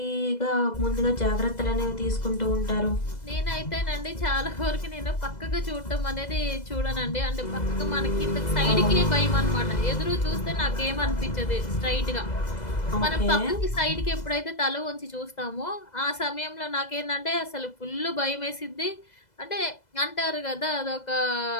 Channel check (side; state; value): right; late; 2.0 ms